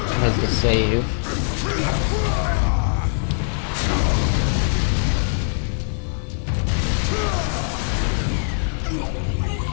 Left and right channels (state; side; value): silent; right; 62 dB below the other